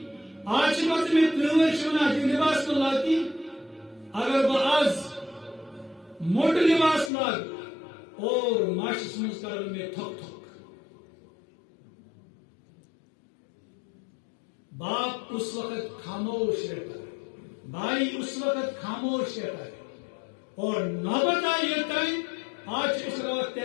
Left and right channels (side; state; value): right; drops out; at 7.1 s